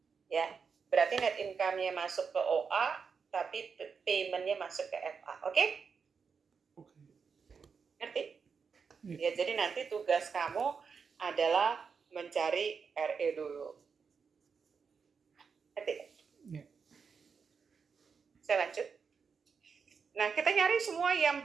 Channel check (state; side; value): quieter; left; 5.8 dB